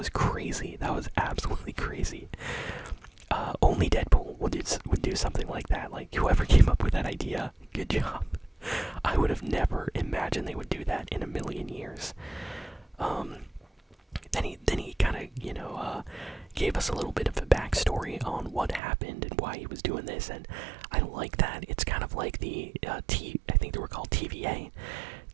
crazy. That was absolutely crazy. Only Deadpool would do something like that. Like, whoever came up with that idea, good job. I would have never imagined they would do that in a million years. Then he kind of, gave us a little bit of a backstory on what happened and why he was doing this, and I like that. It's kind of like the I think they were called TVA.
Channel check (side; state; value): left; drops out; at 18.8 s